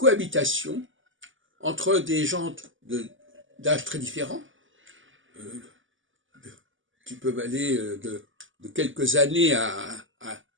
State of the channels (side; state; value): left; late; 0.57 ms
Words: entre des gens d'âge très différents, qui peuvent aller de quelques années à